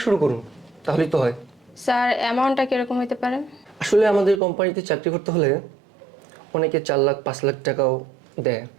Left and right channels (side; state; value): left; drops out; at 4.4 s